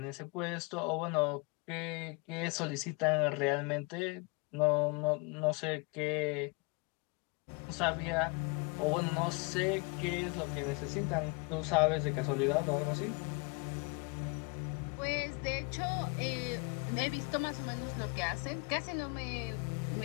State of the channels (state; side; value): quieter; right; 29.3 dB